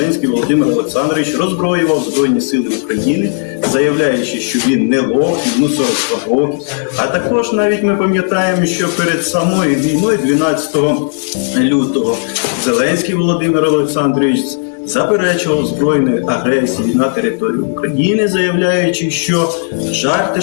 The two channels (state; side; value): silent; right; digital silence